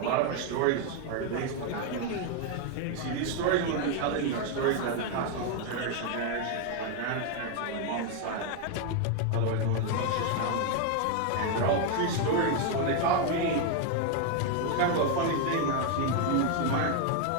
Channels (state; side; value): different; both; correlation 0.01